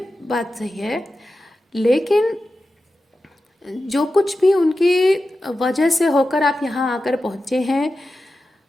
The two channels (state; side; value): normal; both; correlation 0.92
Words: बात सही है, लेकिन जो कुछ भी उनकी वजह से होकर आप यहाँ आकर पहुँचे हैं,